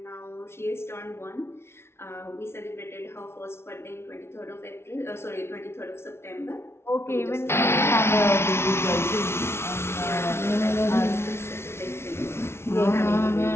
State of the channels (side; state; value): right; late; 0.12 ms